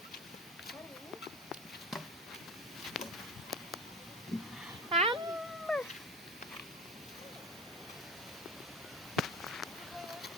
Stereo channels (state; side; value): normal; both; correlation 0.30